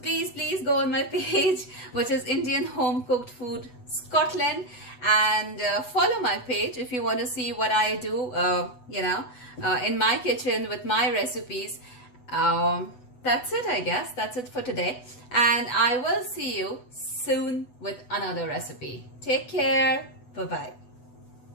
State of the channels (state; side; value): late; right; 8.1 ms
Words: go on my page, which is Indian Home Cooked Food Scotland, and follow my page if you want to see what I do in my kitchen with my recipes. That's it, I guess. That's it for today, and I will see you soon with another recipe. Take care. Bye-bye.